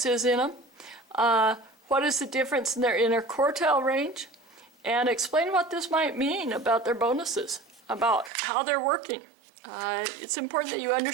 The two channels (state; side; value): drops out; left; at 8.3 s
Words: is in them. What is the difference in their interquartile range, and explain what this might mean about their bonuses, about how they're working. It's important that you